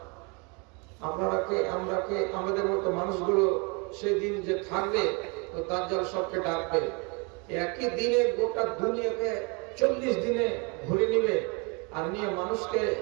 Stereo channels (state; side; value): quieter; left; 31.8 dB